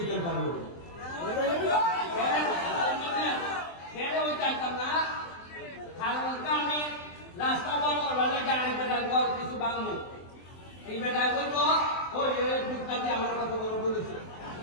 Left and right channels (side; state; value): right; late; 23 ms